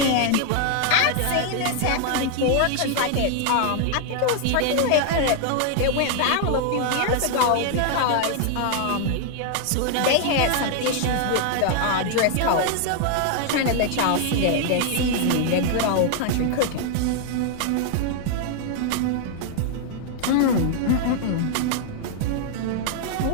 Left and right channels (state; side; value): different; both; correlation 0.00